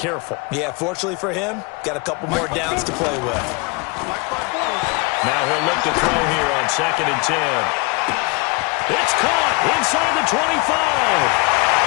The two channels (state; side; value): quieter; right; 27.3 dB